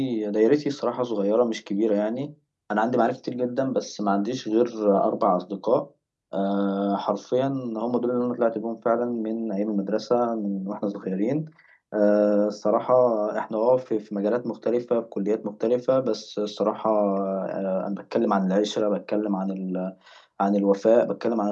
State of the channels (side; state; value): both; identical; correlation 1.00